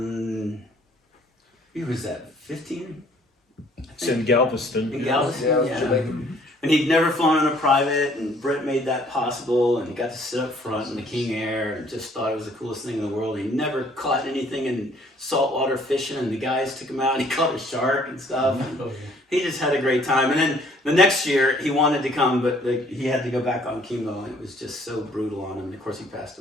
Who was that? 15? It's in Galveston. In Galveston, Yeah, it was yeah. Jamaican. And he'd never flown on a private, and Brett made that possible, and he got to sit up front in the King Air, and just thought it was the coolest thing in the world. He never caught anything in saltwater fishing, and the guys took him out, and he caught a shark and stuff. And he just had a great time. And then the next year, he wanted to come, but he had to go back on chemo, and it was just so brutal on him. And of course, he passed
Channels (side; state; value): both; normal; correlation 0.59